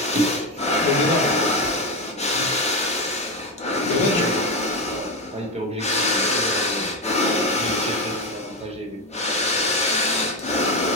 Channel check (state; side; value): normal; both; correlation 0.13